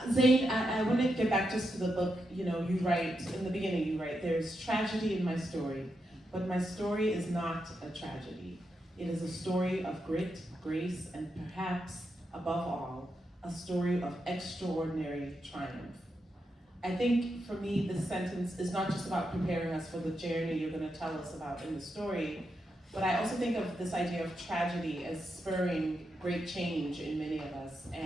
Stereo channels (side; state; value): both; normal; correlation 0.85